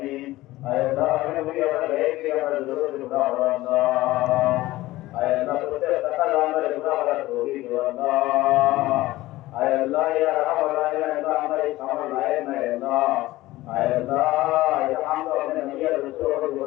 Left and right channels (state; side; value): quieter; right; 17.6 dB